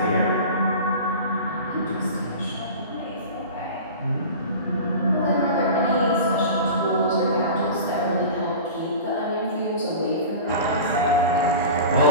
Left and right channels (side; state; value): both; inverted; correlation -0.35